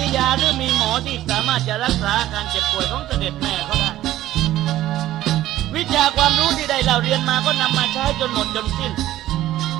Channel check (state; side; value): quieter; left; 14.2 dB